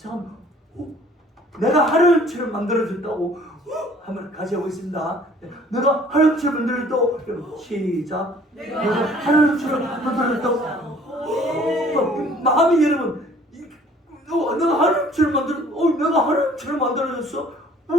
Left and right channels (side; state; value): both; normal; correlation 0.55